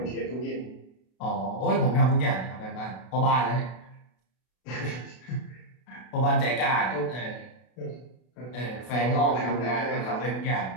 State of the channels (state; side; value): late; right; 32 ms